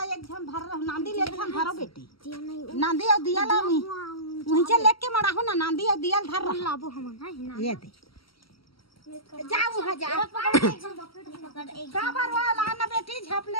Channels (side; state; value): right; late; 0.75 ms